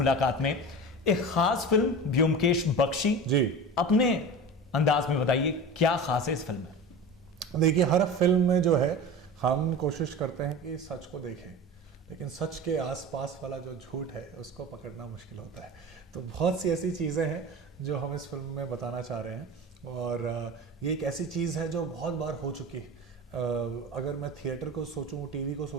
में एक खास फिल्म ब्योमकेश बख्शी जी अपने अंदाज में बताइए क्या खास है इस फिल्म में। देखिए, हर फिल्म में जो है हम कोशिश करते हैं कि सच को देखें, लेकिन सच के आसपास वाला जो झूठ है उसको पकड़ना मुश्किल होता है। तो बहुत सी ऐसी चीज़ें हैं जो हम इस फिल्म में बताना चाह रहे हैं और ये एक ऐसी चीज़ है जो बहुत बार हो चुकी है। अगर मैं थिएटर को सोचूं, टीवी को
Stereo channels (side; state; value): both; normal; correlation 0.32